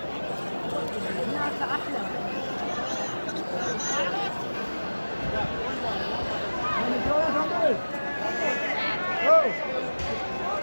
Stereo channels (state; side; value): inverted; both; correlation -1.00